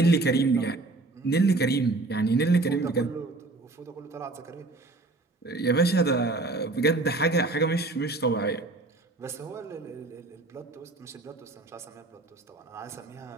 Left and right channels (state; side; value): quieter; left; 3.1 dB